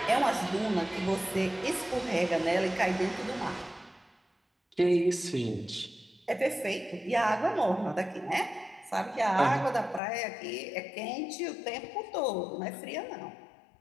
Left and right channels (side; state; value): right; drops out; at 10.0 s